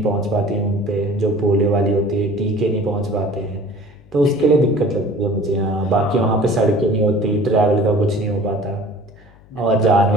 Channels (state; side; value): noise; left; hum, 26 dB below the sound